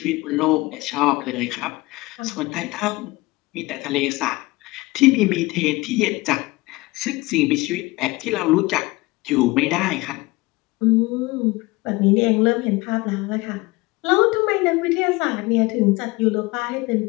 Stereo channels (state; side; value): quieter; right; 21.9 dB